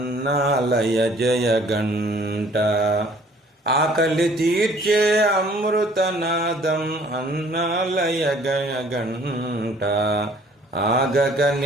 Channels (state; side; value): normal; both; correlation 0.56